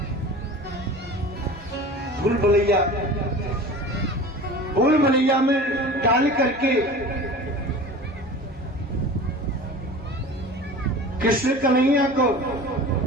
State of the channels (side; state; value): both; normal; correlation 0.37